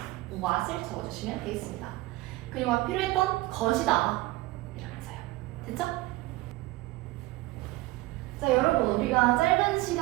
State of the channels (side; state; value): left; quieter; 19.2 dB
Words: 적어주시면 되겠습니다. 그녀가 필요했던 것이다 이러면서요. 됐죠? 자, 여러분, 우리가 짧은